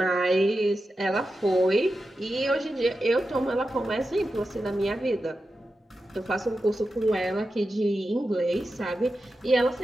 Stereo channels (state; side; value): normal; both; correlation 0.91